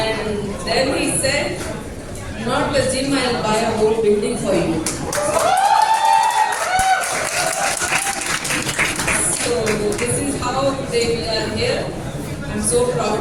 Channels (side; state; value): both; identical; correlation 1.00